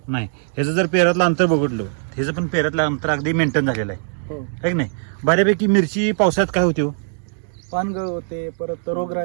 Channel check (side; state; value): left; silent; digital silence